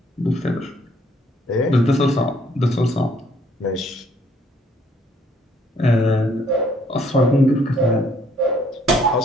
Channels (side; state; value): both; normal; correlation 0.65